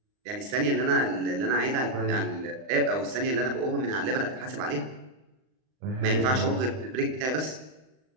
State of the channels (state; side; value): late; left; 39 ms